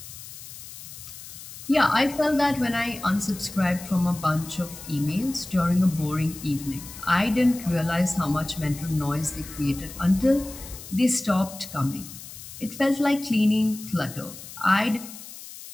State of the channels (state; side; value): noise; left; hiss, 14 dB below the sound